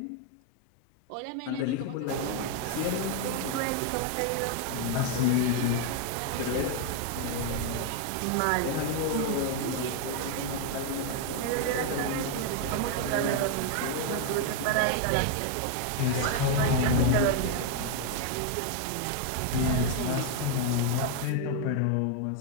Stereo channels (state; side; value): different; both; correlation 0.00